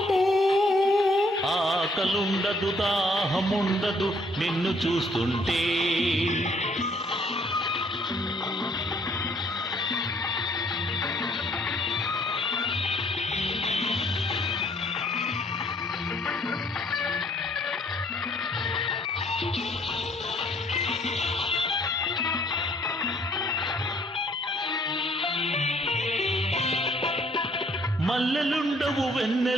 ఆకలుండదు దాహముండదు నిన్ను చూస్తుంటే. మల్లెలుండవు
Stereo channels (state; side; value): normal; both; correlation 0.64